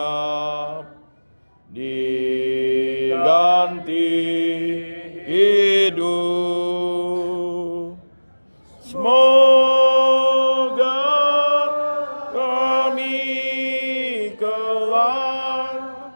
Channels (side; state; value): both; inverted; correlation -1.00